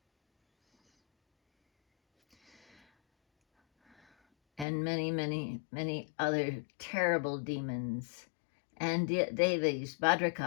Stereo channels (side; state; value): right; drops out; at 4.7 s